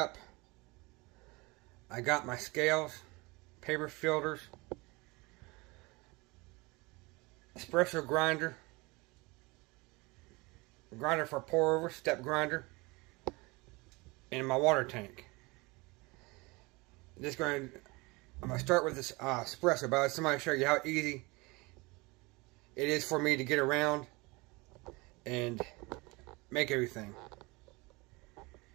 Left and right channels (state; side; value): quieter; left; 24.9 dB